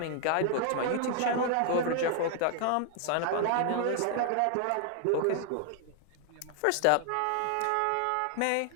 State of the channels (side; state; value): both; different; correlation 0.00